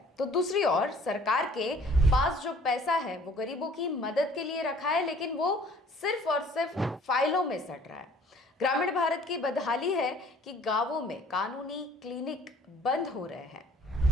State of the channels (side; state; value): both; normal; correlation 0.54